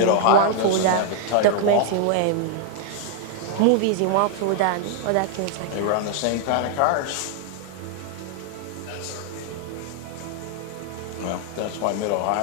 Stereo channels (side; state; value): both; different; correlation 0.00